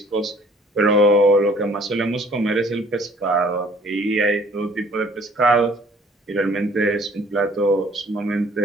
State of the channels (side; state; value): both; normal; correlation 0.55